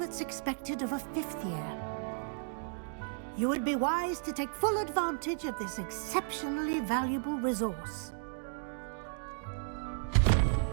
expected of a 5th year. You would be wise to take full advantage of this exceptionally valuable resource.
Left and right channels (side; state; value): left; silent; digital silence